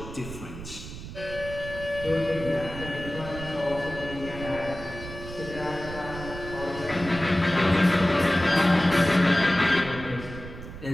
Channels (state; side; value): noise; right; rumble, 11 dB below the sound